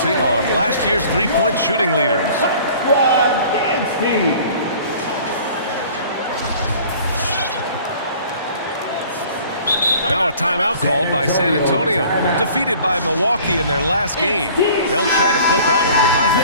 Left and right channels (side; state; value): both; inverted; correlation -0.49